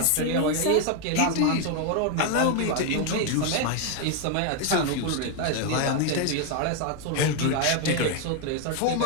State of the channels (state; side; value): different; both; correlation 0.01